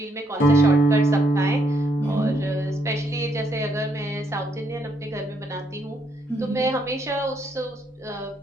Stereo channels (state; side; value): normal; both; correlation 0.73